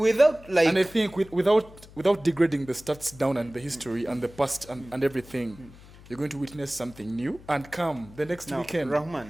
like. and I think without degrading the stats down and the history and the past and everything, you're going to witness something new. And come the next Now, weekend,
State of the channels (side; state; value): left; noise; hum, 21 dB below the sound